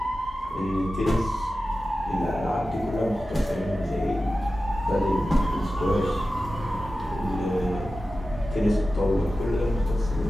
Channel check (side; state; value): both; normal; correlation 0.94